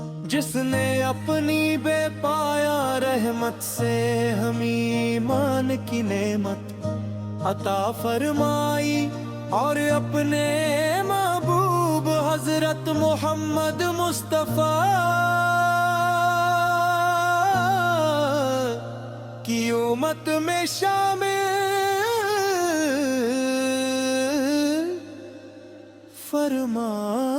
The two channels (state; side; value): identical; both; correlation 1.00